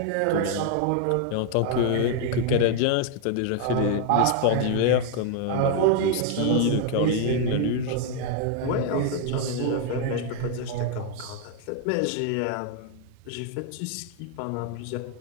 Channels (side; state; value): both; different; correlation 0.00